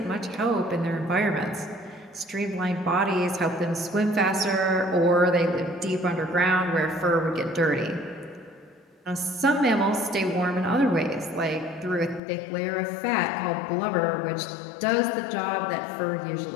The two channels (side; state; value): right; drops out; at 12.2 s